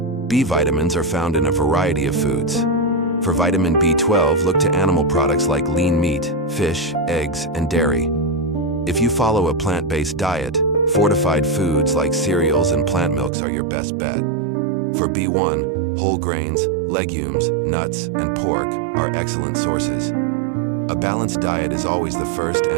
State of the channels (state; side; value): drops out; left; at 13.3 s